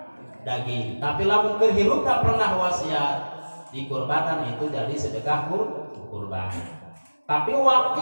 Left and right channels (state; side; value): inverted; both; correlation -1.00